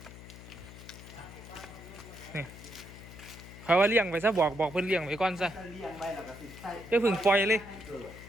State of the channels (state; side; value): noise; left; hum, 15 dB below the sound